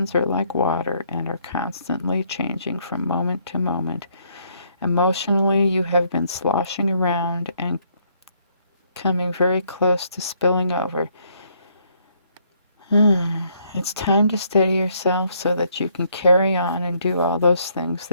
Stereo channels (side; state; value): both; inverted; correlation -0.69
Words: are like water and are constantly changing from moment to moment. Emotionally, you have been sloshing around and coming very close to spilling over. It's time to steady yourself so that you can carry on and do all those things